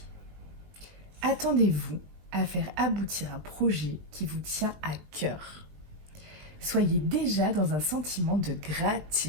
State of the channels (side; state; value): left; late; 20 ms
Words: attendez-vous à faire aboutir un projet qui vous tient à cœur. Soyez déjà dans un sentiment de